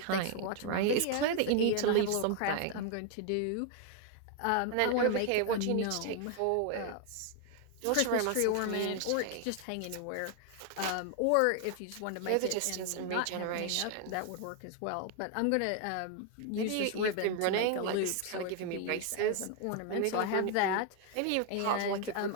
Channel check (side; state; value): both; different; correlation 0.00